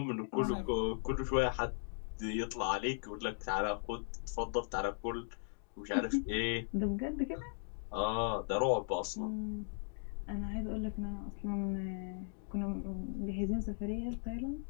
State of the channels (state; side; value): silent; right; digital silence